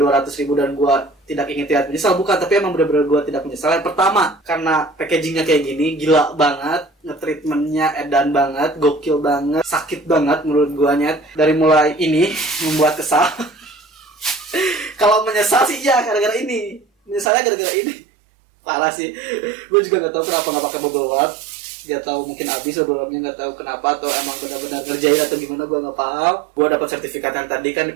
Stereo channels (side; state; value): left; drops out; at 17.3 s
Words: dan gue tidak ingin terlihat menyesal, bukan. Tapi emang bener-bener gue tidak menyesal. Yang pertama, karena packagingnya kayak gini, gila banget. Nge-treatmentnya edan banget, gokil banget, sakit banget menurut guanya. Dari mulai ini membuat kesal. Kalau menyesal sih ya gara-gara ini, menyesalnya gara-gara ini. Parah sih. Gue juga nggak tahu kenapa nggak pakai bubble wrap. Dia tahu mungkin habis bubble wrapnya, nggak tahu kenapa, atau emang benar-benar ngerjain atau gimana, gue nggak paham. Gue dapat sertifikat yang tadi kan